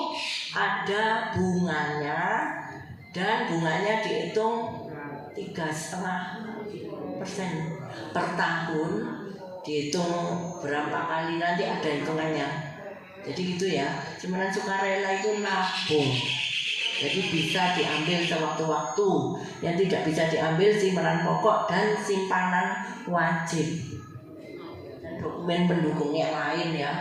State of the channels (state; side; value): identical; both; correlation 1.00